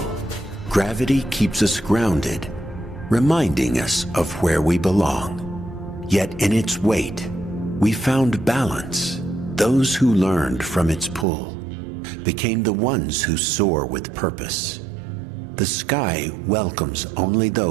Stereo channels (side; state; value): left; drops out; at 11.2 s